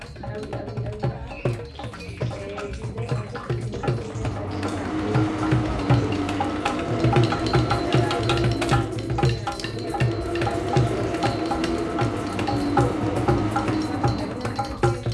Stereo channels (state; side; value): identical; both; correlation 1.00